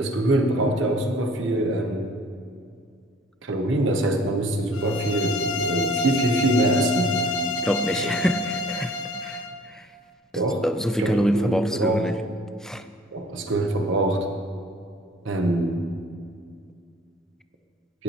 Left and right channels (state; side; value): normal; both; correlation 0.52